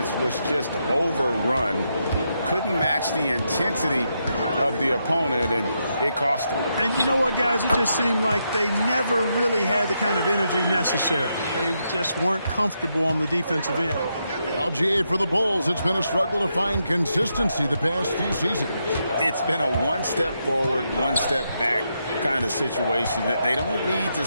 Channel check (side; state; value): both; inverted; correlation -0.82